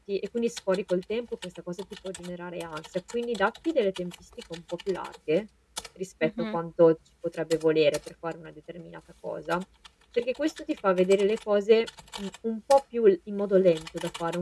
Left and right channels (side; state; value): both; identical; correlation 1.00